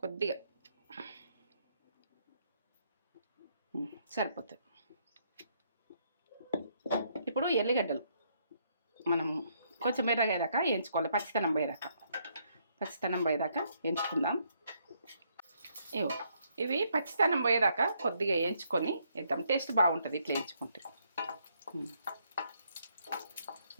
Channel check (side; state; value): both; inverted; correlation -0.72